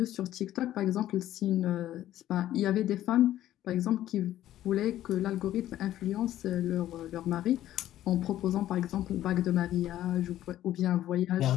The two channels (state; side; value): quieter; right; 13.1 dB